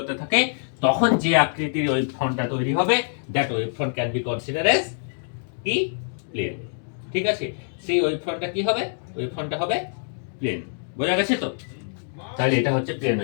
থাকে, তখন যে আকৃতির ওয়েভ ফ্রন্টটা তৈরি হবে, that wave front can be consider as কি প্লেন। ঠিক আছে, সেই ওয়েভ ফ্রন্টটা কি হবে? ওয়েভ ফ্রন্টটা হবে প্লেন। বোঝা গেছে তো? তাহলে এটা হচ্ছে প্লেন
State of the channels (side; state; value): right; silent; digital silence